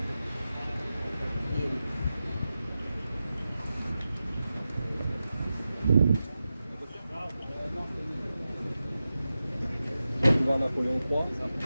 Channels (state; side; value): inverted; both; correlation -0.92